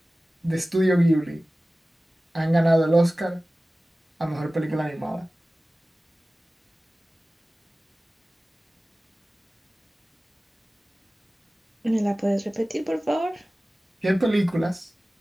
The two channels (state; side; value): normal; both; correlation 0.97